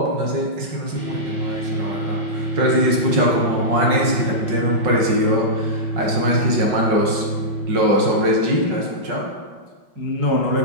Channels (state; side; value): late; left; 5.4 ms